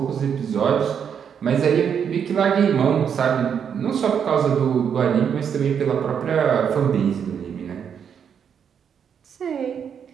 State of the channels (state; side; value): quieter; left; 7.6 dB